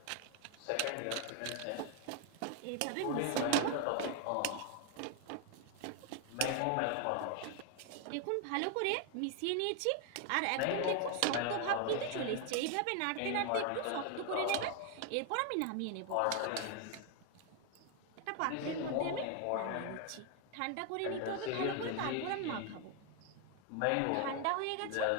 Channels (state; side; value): different; both; correlation 0.01